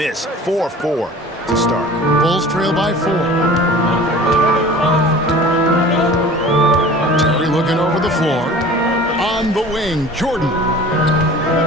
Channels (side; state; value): both; normal; correlation 0.43